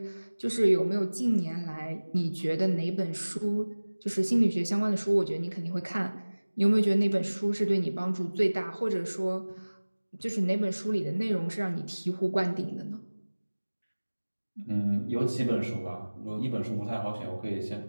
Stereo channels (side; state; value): both; inverted; correlation -1.00